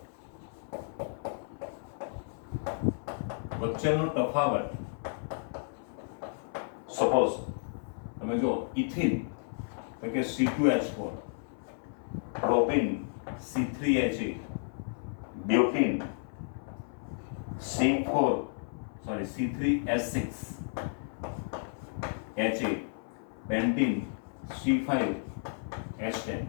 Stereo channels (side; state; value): right; silent; 56 dB below the other